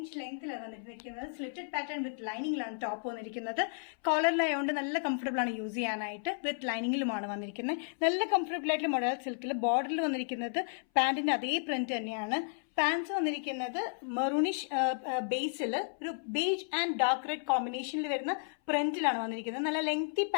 ലെങ്തിലാണ് വന്നിരിക്കുന്നത്. സ്ലിറ്റഡ് പാറ്റേൺ വിത്ത് ലൈനിങ്ങിലാണ് ടോപ്പ് വന്നിരിക്കുന്നത്. കോളറിലായതുകൊണ്ട് നല്ല കംഫർട്ടബിൾ ആണ് യൂസ് ചെയ്യാനായിട്ട്. വിത്ത് ലൈനിങ്ങിലുമാണ് വന്നിരിക്കുന്നത്. നല്ല കംഫർട്ടബിൾ ആയിട്ട് മൊഡൽ സിൽക്കിൽ ബോർഡറിൽ വന്നിരിക്കുന്നത് പാന്റിന്റെ അതേ പ്രിന്റ് തന്നെയാണ്. പാൻസ് വന്നിരിക്കുന്നത് മെറൂണിഷ് ബേസിൽ ഒരു ബേജ് ആൻഡ് ഡാർക്ക് റെഡ് കോമ്പിനേഷനിൽ വരുന്ന പ്രിന്റിലാണ് വന്നിരിക്കുന്നത്. നല്ല ലെങ്തി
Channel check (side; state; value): right; silent; 56 dB below the other